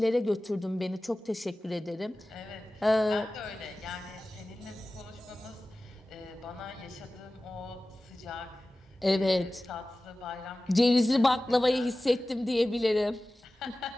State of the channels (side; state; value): both; normal; correlation 0.96